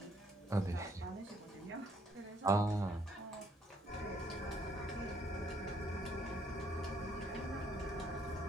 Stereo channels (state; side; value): normal; both; correlation 0.68